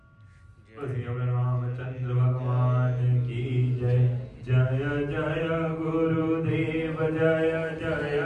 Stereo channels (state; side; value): identical; both; correlation 1.00